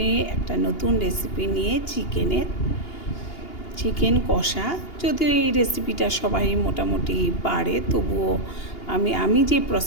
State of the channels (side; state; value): right; late; 2.8 ms